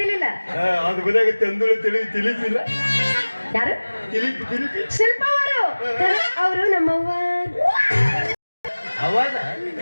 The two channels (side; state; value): both; inverted; correlation -1.00